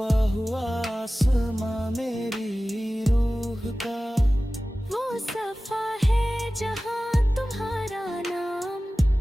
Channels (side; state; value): both; normal; correlation 0.96